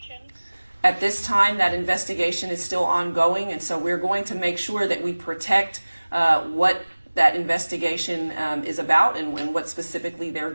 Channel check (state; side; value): inverted; both; correlation -1.00